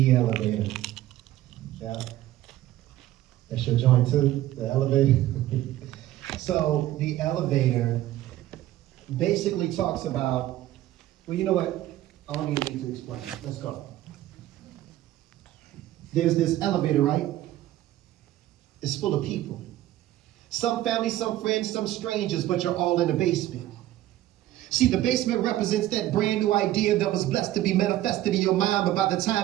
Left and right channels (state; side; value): quieter; left; 14.4 dB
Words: elevator. Yeah. That's your joint too, the elevator. So the elevator basically talks about, well, you know what? I don't even need to explain. Let's go. There's this elevator, right? It's full of people. Some family, some friends, some strangers, but you're all in the basement. See, the basement represents that brand new idea that was blessed to be manifested in your mind, but by the